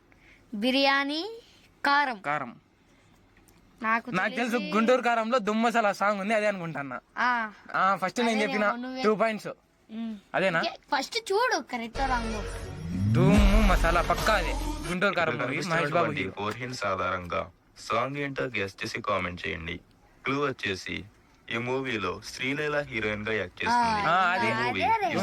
బిర్యానీ కారం. కారం. నాకు నాకు తెలుసు, గుంటూరు కారంలో దుమ్ మసాలా సాంగ్ ఉంది, అదే అనుకుంటున్నా. ఫస్ట్ నేను చెప్పిన 2 పాయింట్స్ అదేనా? ఫస్ట్ చూడు కరెక్ట్ రాంగ్. దుమ్ మసాలా పక్కా అదే, గుంటూరు కారం movie, Mahesh Babu hero. 4 hints ఆధారంగా సాంగ్ ఏంటో గెస్ చేసి కామెంట్ చేయండి. క్లూ వచ్చేసి ఈ మూవీలో శ్రీలీల హీరోయిన్ గా యాక్ట్ చేస్తుంది. అదే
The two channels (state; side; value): identical; both; correlation 1.00